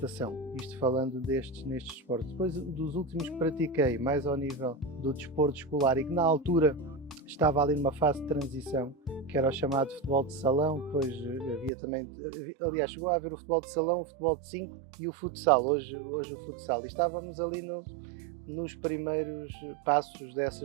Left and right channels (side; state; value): left; drops out; at 11.7 s